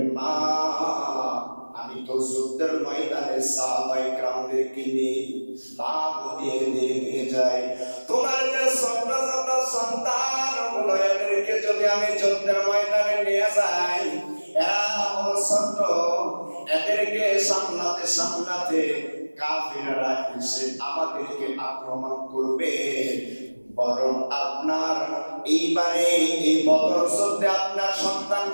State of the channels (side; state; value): both; inverted; correlation -1.00